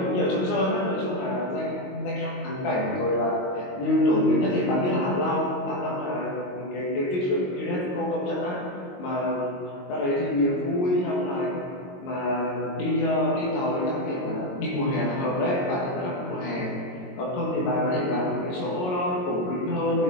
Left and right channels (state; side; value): late; right; 22 ms